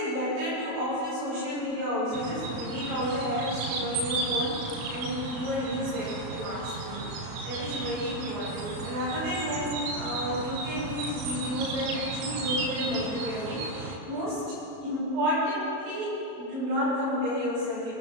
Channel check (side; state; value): left; late; 35 ms